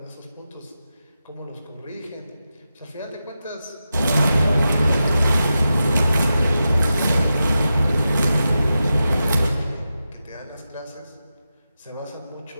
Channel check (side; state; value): both; inverted; correlation -0.91